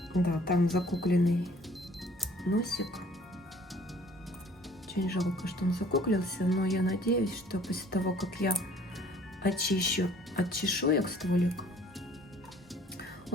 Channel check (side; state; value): both; normal; correlation 0.55